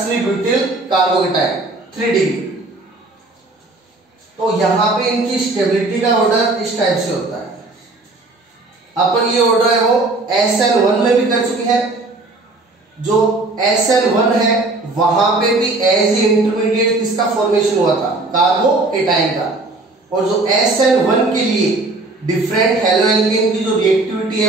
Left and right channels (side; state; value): left; quieter; 3.1 dB